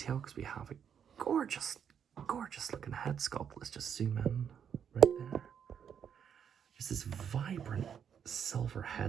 because we have a gorgeous looking head sculpt. Let's just zoom in right there. Just this vibrant silver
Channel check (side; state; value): left; quieter; 8.0 dB